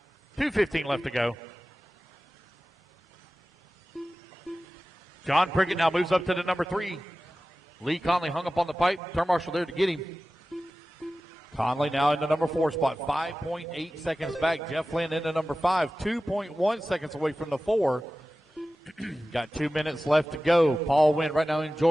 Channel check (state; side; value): normal; both; correlation 0.95